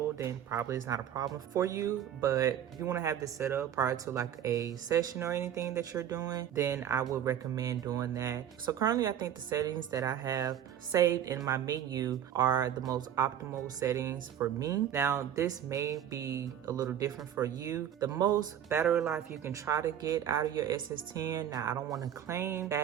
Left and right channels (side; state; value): left; quieter; 10.0 dB